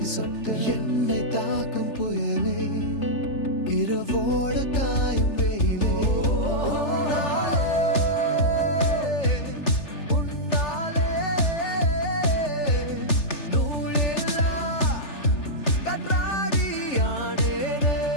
சொட்டு என்னை தாக்கும் புயலே இரவோடு காயும்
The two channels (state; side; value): late; right; 3.4 ms